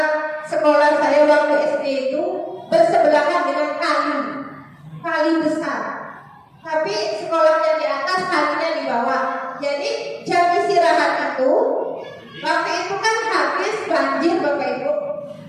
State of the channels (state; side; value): identical; both; correlation 1.00